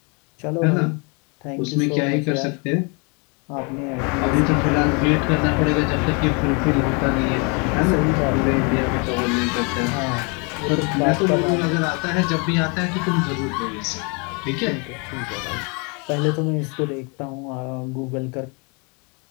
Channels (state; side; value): quieter; right; 33.2 dB